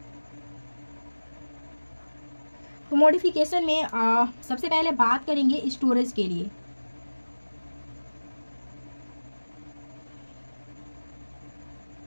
तो मॉडिफिकेशन में सबसे पहले बात करेंगे स्टोरेज के लिए।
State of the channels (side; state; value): both; inverted; correlation -1.00